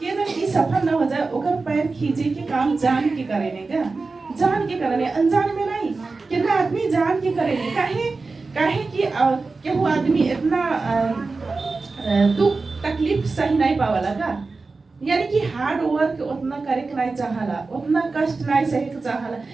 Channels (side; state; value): left; quieter; 3.9 dB